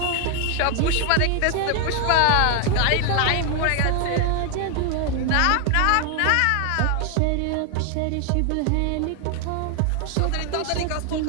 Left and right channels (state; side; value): different; both; correlation 0.00